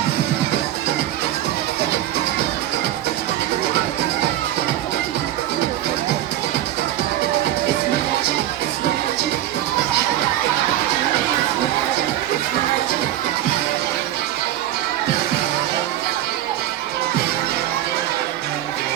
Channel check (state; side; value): quieter; left; 13.1 dB